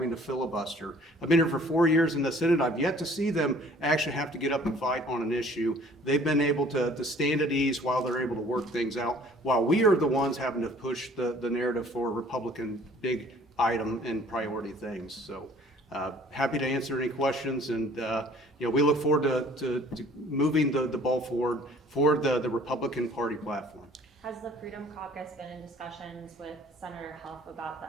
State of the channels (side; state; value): both; normal; correlation 0.54